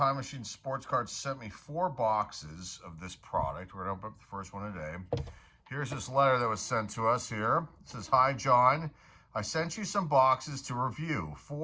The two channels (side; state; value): both; identical; correlation 1.00